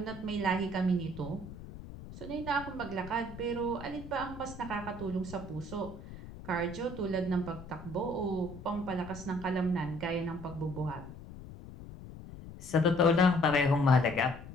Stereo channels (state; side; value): noise; left; rumble, 14 dB below the sound